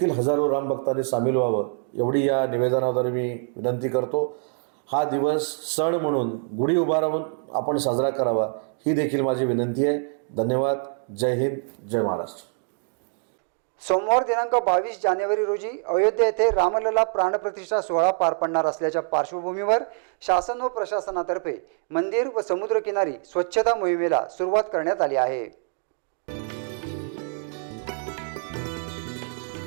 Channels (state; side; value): silent; left; 57 dB below the other